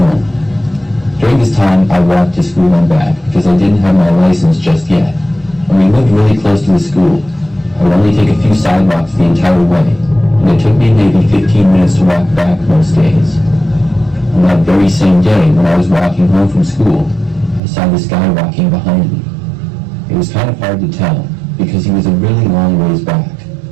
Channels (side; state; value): left; drops out; at 17.6 s